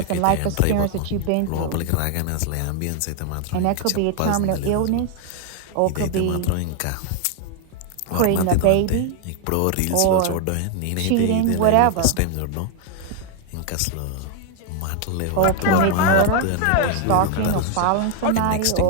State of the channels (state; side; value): different; both; correlation 0.01